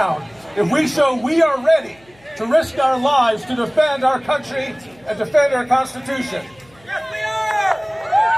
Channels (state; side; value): noise; left; hum, 30 dB below the sound